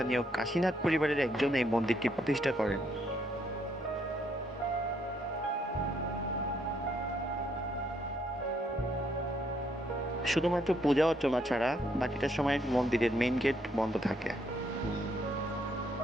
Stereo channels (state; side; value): normal; both; correlation 0.72